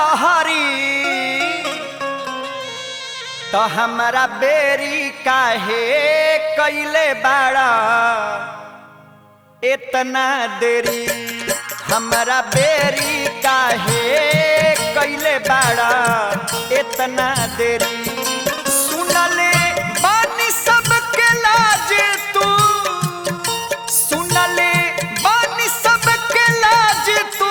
तो हमारा बेरी काहे कैले बाड़ा इतना देरी, हमारा बेरी काहे कैले बाड़ा इतना देरी। सुनले बानी सबके लाज तू, सुनले बानी सबके लाज तू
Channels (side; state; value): both; identical; correlation 1.00